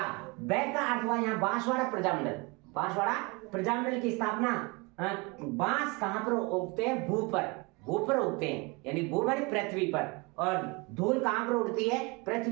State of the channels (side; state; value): left; quieter; 27.9 dB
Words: बै का अर्थ हुआ यहाँ बांसवाड़ा प्रजामंडल। बांसवाड़ा प्रजामंडल की स्थापना, बांस कहां पर उगते हैं? भू पर उगते हैं, यानी भू मानी पृथ्वी पर, और धूल कहां पर उड़ती है?